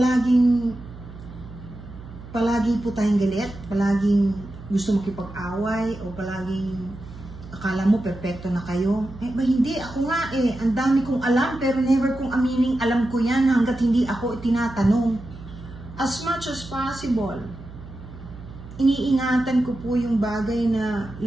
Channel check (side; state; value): right; noise; hum, 15 dB below the sound